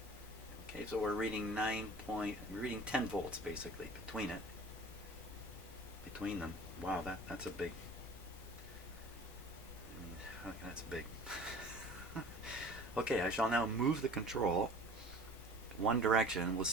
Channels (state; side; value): normal; both; correlation 0.44